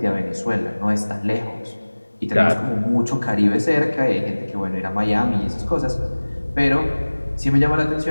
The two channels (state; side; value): inverted; both; correlation -1.00